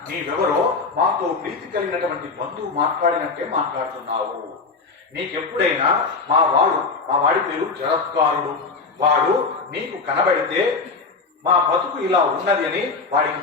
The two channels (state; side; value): quieter; right; 4.3 dB